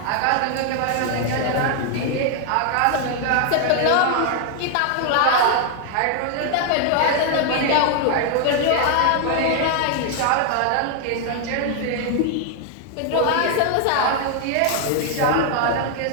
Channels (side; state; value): both; different; correlation 0.00